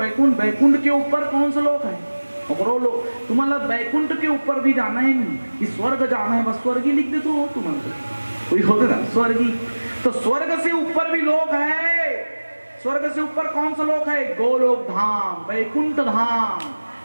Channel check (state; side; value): inverted; both; correlation -1.00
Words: वैकुंठ के ऊपर कौन सा लोक है और लोग तुम्हारा वैकुंठ के ऊपर भी जाना है नहीं कि स्वर्ग जाना है बस स्वर्ग ही लिख दे तो तुम्हारा कोई होते ना स्वर्गी। तो स्वर्ग से ऊपर भी लोक है। स्वर्ग से ऊपर कौन सा लोक है? गोलोक धाम, वैकुंठ धाम,